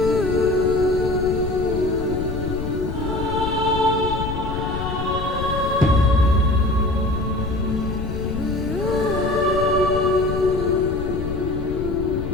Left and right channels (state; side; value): noise; left; rumble, 5 dB below the sound